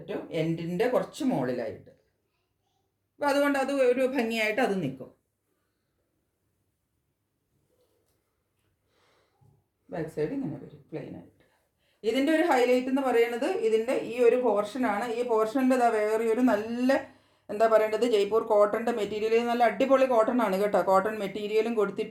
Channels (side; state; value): both; identical; correlation 1.00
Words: എൻഡിൻ്റെ കുറച്ച് മുകളിലായിട്ട്. അപ്പോൾ അതുകൊണ്ട് അത് ഒരു ഭംഗിയായിട്ട് അത് നിൽക്കും. ബാക്ക് സൈഡ് ഇങ്ങനെ വരും പ്ലെയിൻ ആയിട്ട്. ഇതിൻ്റെ ഒരു ഹൈലൈറ്റ് എന്ന് പറയുന്നത് ഇതിൻ്റെ ഈ ഒരു പോർഷനാണ്. ഈ പോർഷൻ്റെ വേറെ ഒരു നല്ല എന്താ പറയേണ്ടത്, ജയ്പൂർ കോട്ടൻ്റെ മെറ്റീരിയൽ, നല്ല അടിപൊളി കോട്ടൺ ആണ് കേട്ടോ. കോട്ടൺ മെറ്റീരിയലും